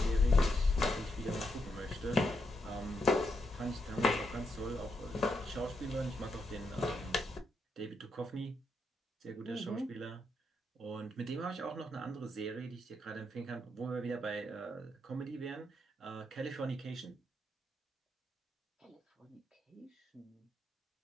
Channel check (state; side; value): normal; both; correlation 0.81